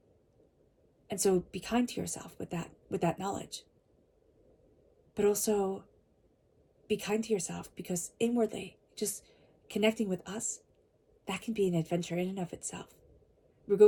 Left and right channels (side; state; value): both; identical; correlation 1.00